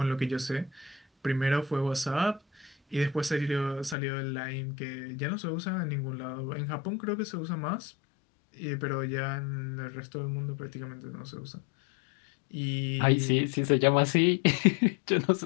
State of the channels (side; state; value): right; drops out; at 4.0 s